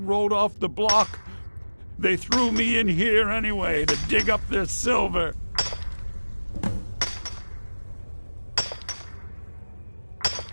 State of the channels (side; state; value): both; inverted; correlation -1.00